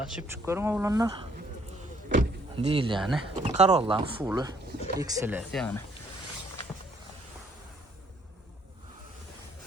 çıkıyorum oğlanlar. Değil yani. Corolla'nın full'u. XLS yani.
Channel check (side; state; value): both; normal; correlation 0.65